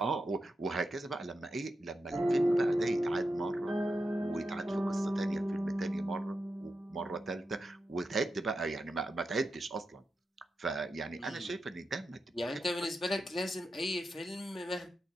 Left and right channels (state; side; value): normal; both; correlation 0.88